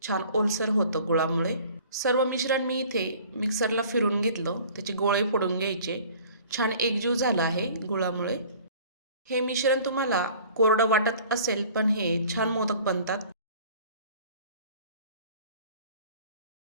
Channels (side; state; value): both; inverted; correlation -0.49